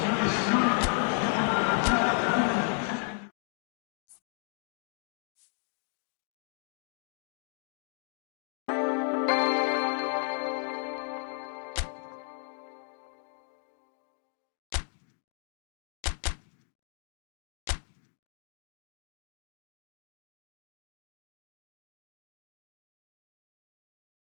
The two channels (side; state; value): right; silent; 55 dB below the other